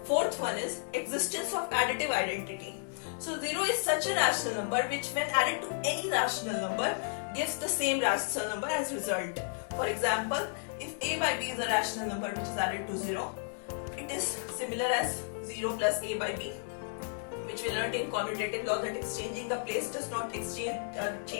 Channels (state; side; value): silent; right; digital silence